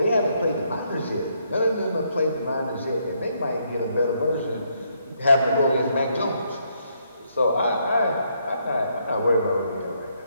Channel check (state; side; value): inverted; both; correlation -0.74